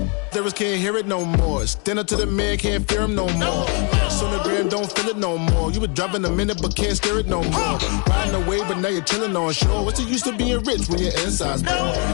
Lyrics can't hear it no more. Stand up to the man, can't fear him no more. On the gram, don't feel it no more. You were driving a minute, but can't steer it no more. Riding away, but now you're chilling on shore. What's it used to being rich when your inside's poor?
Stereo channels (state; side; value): quieter; right; 36.2 dB